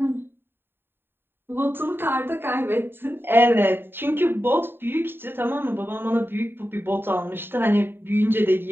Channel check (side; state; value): left; late; 0.10 ms